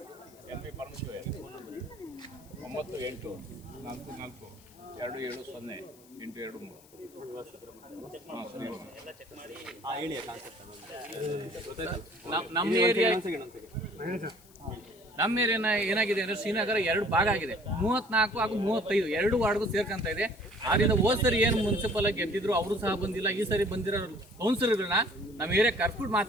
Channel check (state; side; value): noise; left; hiss, 26 dB below the sound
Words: L V Parameshwar 9844270823. ಹಾಂ ಸರಿ. ನಮ್ಮ ಏರಿಯಾ ಏನಾಗಿದೆ ಅಂದರೆ ಶ್ರೀನಗರ 2 ಭಾಗ ಆಗಿದೆ. 34 ಹಾಗೂ 35 2 ವಾರ್ಡ್ಗೂ ಸೇರ್ಕೊಂತ ಇದೆ. ಆದ್ದರಿಂದ ಹೋದ್ ಸರಿ ಏನು ಮುನ್ಸಿಪಲ್ ಆಗಿ ಗೆದ್ದಿದ್ರು ಅವರು ಸಹ ಬಂದಿಲ್ಲ. ಈ ಸರಿ ಬಂದಿರೋ ಕೌನ್ಸಿಲರ್ಗಳನ್ನ ನಮ್ಮ ಏರಿಯಾ ಕರ್ಬಿಟ್ಟು